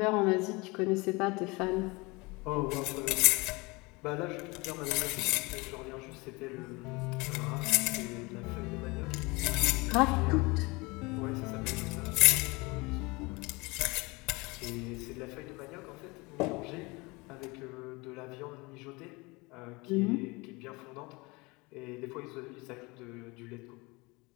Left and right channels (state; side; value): quieter; right; 25.2 dB